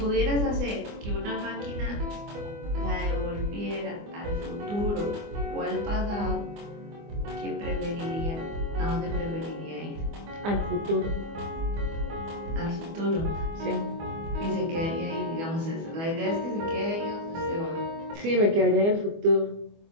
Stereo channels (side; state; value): left; late; 24 ms